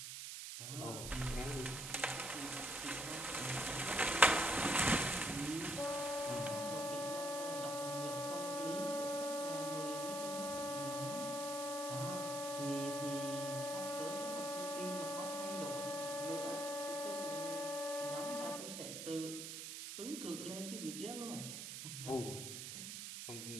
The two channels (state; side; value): noise; right; hiss, 6 dB below the sound